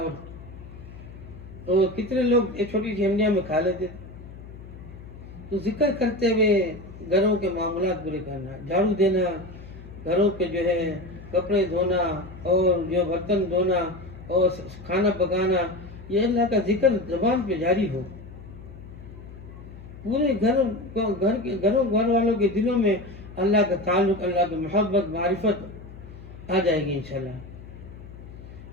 اور کتنے لوگ یہ چھوٹی سی ہنڈیاں میں کھا لیتے تھے۔ تو ذکر کرتے ہوئے گھروں کے معاملات پورے کرنا، جھاڑو دینا، گھروں کے جو ہے کپڑے دھونا اور جو برتن دھونا اور کھانا پکانا، یہ اللہ کا ذکر زبان پہ جاری ہو، پورے گھر والوں کے دلوں میں اللہ کا تعلق، اللہ کی محبت، معرفت آ جائے گی انشاءاللہ،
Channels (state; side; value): noise; left; hum, 16 dB below the sound